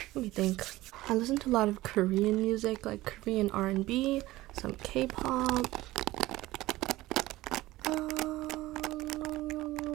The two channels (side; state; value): left; quieter; 17.7 dB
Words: Let me think. I listen to a lot of Korean music, like Korean R&B, some K-pop.